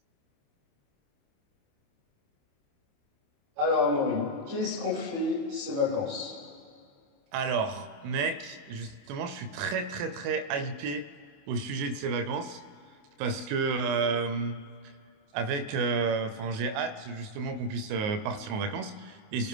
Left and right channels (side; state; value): left; late; 28 ms